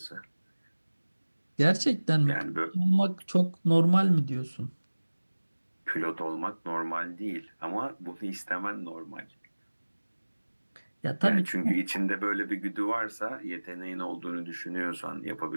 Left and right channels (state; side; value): inverted; both; correlation -1.00